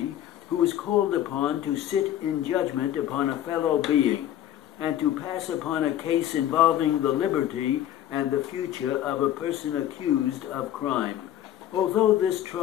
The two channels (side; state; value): right; quieter; 11.8 dB